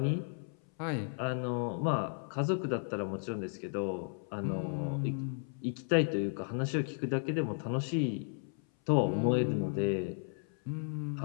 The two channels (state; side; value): silent; right; 55 dB below the other